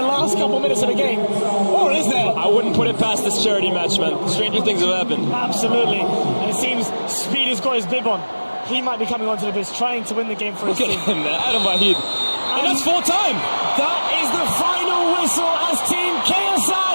last couple minutes of the game. Or is there? I wouldn't put it past this charity match, man. Stranger things have happened. Absolutely. And it seems Speed has got his bib on. He might be coming onto the pitch trying to win the game for his Look at team. him, man. Adam Wahid. And that's full time. That is the final whistle as Team KSI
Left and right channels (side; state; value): both; inverted; correlation -1.00